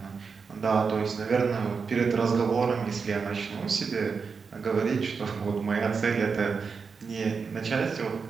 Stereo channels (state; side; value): quieter; left; 5.3 dB